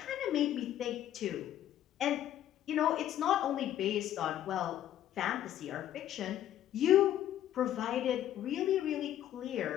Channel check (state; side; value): quieter; right; 11.9 dB